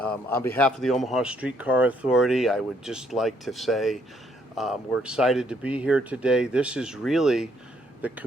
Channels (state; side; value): normal; both; correlation 0.69